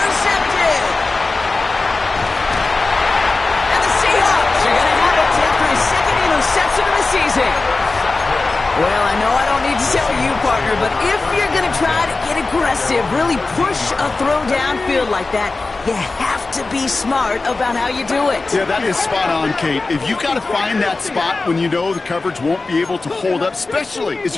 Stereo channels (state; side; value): quieter; right; 3.6 dB